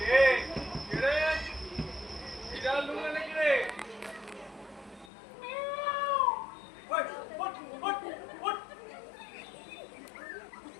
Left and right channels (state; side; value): drops out; right; at 5.1 s